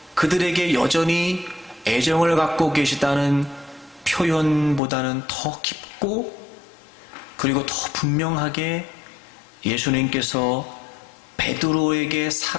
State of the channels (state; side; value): drops out; right; at 4.8 s